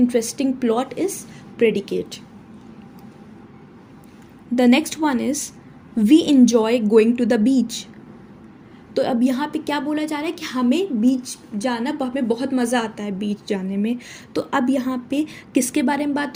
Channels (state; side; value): identical; both; correlation 1.00